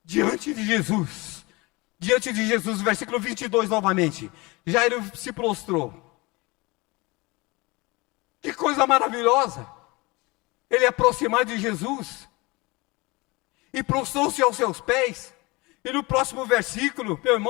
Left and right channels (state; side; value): quieter; right; 24.3 dB